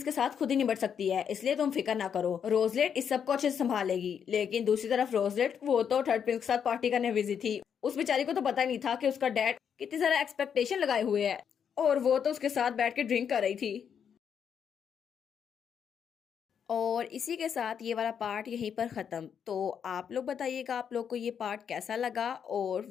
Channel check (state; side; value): quieter; right; 7.7 dB